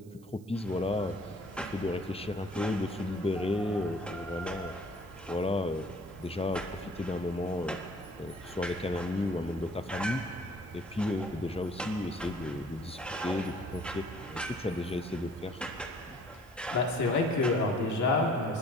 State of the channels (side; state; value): right; noise; hiss, 27 dB below the sound